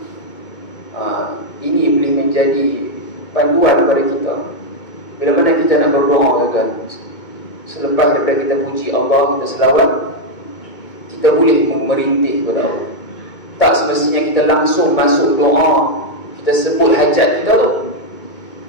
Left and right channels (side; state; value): right; late; 2.2 ms